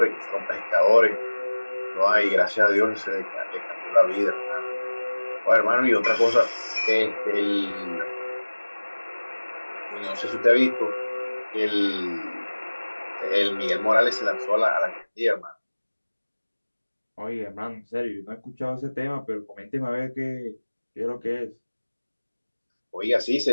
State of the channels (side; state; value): both; inverted; correlation -1.00